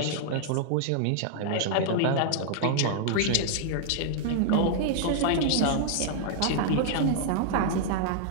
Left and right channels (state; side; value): different; both; correlation -0.01